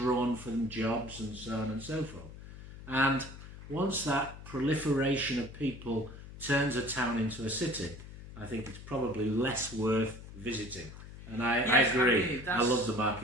from jobs and so on and so forth. And once that proliferation of people turns a town into a city, I think it's probably less worth visiting. And I agree. I love the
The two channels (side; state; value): left; noise; hum, 14 dB below the sound